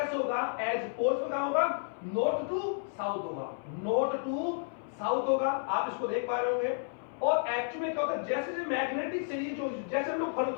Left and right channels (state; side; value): silent; right; 57 dB below the other